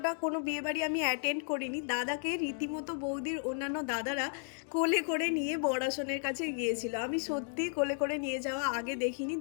কোনো বিয়ে বাড়ি আমি অ্যাটেন্ড করিনি। দাদাকে রীতিমতো বৌদির অন্যান্য দাদারা কোলে করে নিয়ে বড়াসনের কাছে গিয়েছিল। আমি সত্যি কোলে করে নিয়ে যাওয়া আগে দেখিনি,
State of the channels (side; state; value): right; silent; 55 dB below the other